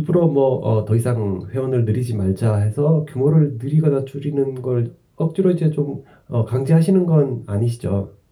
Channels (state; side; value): identical; both; correlation 1.00